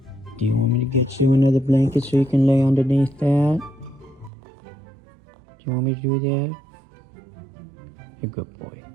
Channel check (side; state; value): left; drops out; at 4.3 s